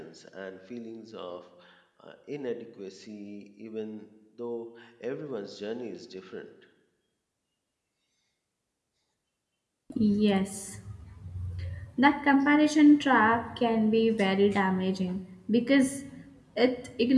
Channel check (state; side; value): identical; both; correlation 1.00